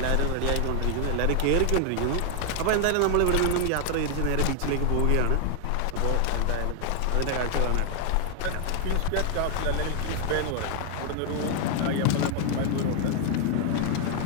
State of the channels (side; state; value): both; different; correlation 0.00